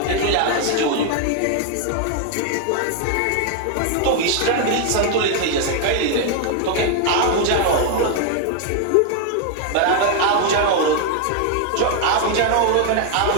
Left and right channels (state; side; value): different; both; correlation 0.00